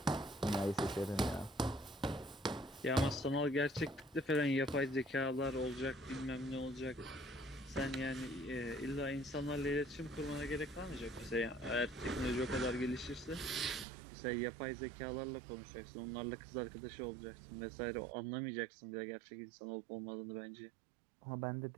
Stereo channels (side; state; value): left; drops out; at 13.9 s